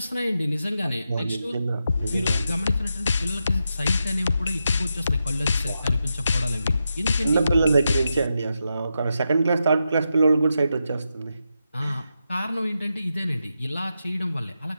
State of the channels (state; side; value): inverted; both; correlation -0.86